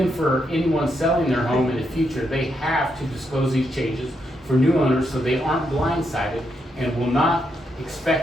for anyone selling their home in the future, they have to disclose these changes for new owners so they aren't blindsided and will not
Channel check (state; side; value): normal; both; correlation 0.80